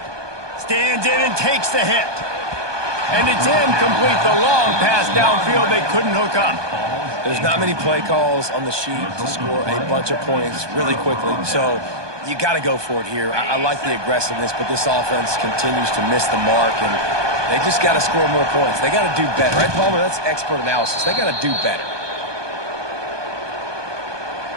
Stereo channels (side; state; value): left; late; 1.2 ms